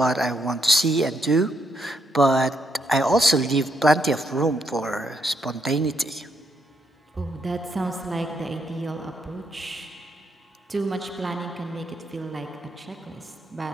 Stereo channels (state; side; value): normal; both; correlation 0.77